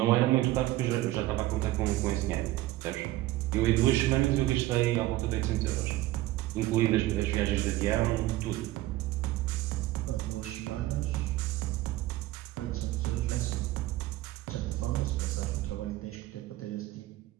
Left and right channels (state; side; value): quieter; left; 16.6 dB